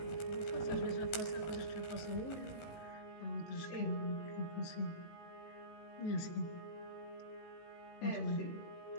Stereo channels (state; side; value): late; right; 18 ms